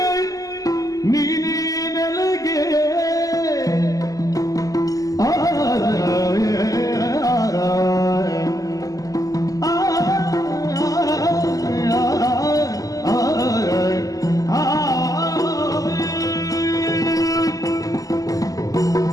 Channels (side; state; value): right; late; 0.17 ms